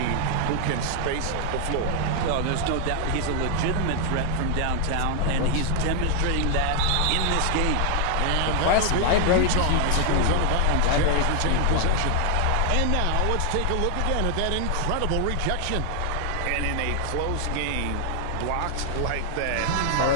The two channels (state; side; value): different; both; correlation 0.00